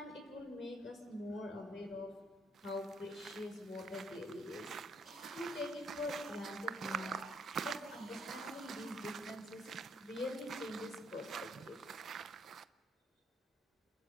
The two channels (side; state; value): both; normal; correlation 0.71